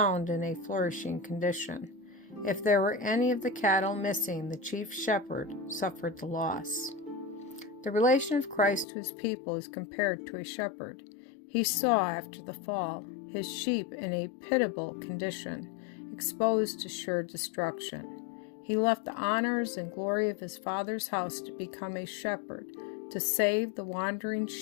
in a flourishing condition. If there were any of the cattle missing, the chief shepherd suffered the loss. The relation of Christ to his people is compared to a shepherd. He saw, after the fall, his sheep in a pitiable condition, exposed to sure destruction. He left the honors and glory of his Father's house to become a shepherd, to save the wandering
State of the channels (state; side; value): drops out; right; at 8.8 s